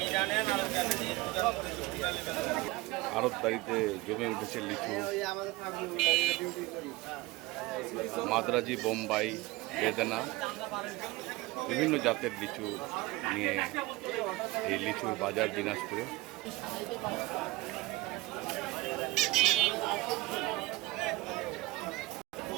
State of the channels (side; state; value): left; quieter; 20.1 dB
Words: আড়তদারিতে জমে উঠেছে লিচু। মাদ্রাজি, বোম্বাই, বেদানা, বিভিন্ন জাতের লিচু নিয়ে এই লিচুর বাজার দিনাজপুরে।